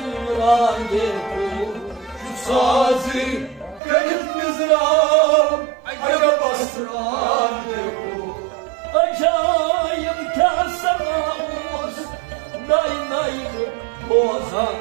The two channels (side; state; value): left; drops out; at 3.8 s